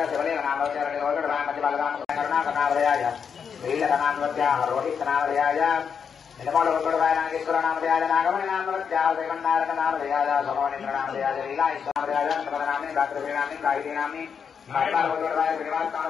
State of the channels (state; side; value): quieter; right; 6.7 dB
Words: शिवलिंगनामृत्याय मध्यबलरामकरुणाकरनामृयाय वीरकनामृत्याः रोहितनामृयाय निलमोलकुटुरवाय नागेश्वरनामृयाय नागमणिनामृत्याः श्रीमन्नारायणनामृयाय सोमवनेन्द्रनामृयाय लीलाईश्वरनामृयाय समरनाम्नि दात्रश्रीनाम्नि गायत्रीनाम्नि मारिपालकुटुरवाय